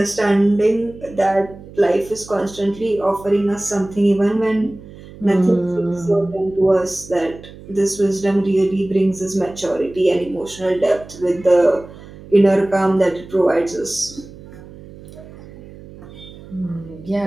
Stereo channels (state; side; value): noise; right; hum, 18 dB below the sound